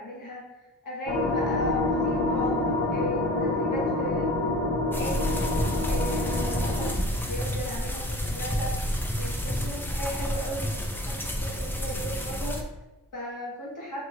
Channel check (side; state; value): both; normal; correlation 0.42